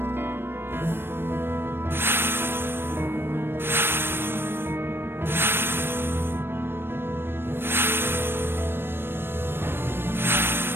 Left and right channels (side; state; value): left; late; 0.10 ms